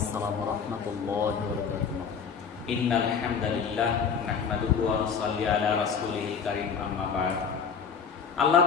ওয়া রাহমাতুল্লাহি ওয়া বারাকাতুহু। ইন্নাল হামদালিল্লাহ নাহমাদুহু ওয়া নুসাল্লি আলা রাসূলিল কারীম, আম্মা বা'দ। আল্লাহ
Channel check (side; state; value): right; quieter; 6.4 dB